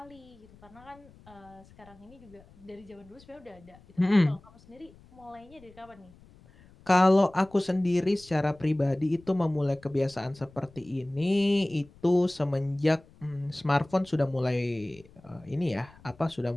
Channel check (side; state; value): left; noise; rumble, 25 dB below the sound